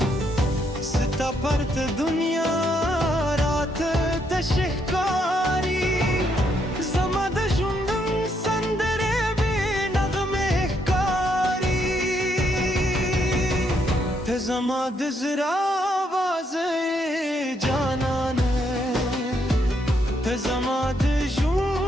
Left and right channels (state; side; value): normal; both; correlation 0.75